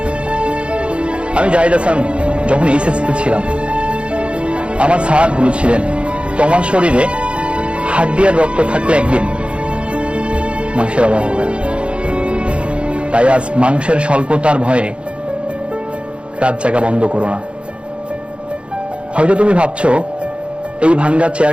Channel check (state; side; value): late; left; 0.058 ms